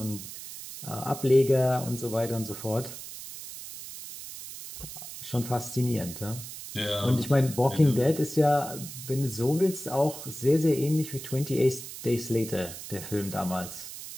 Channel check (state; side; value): noise; right; hiss, 11 dB below the sound